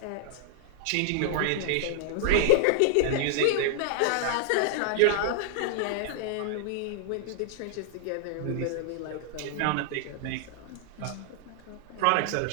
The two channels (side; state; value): both; different; correlation 0.00